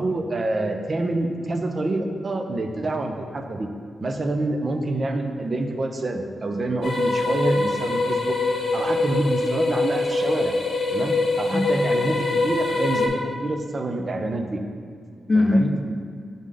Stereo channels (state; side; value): normal; both; correlation 0.88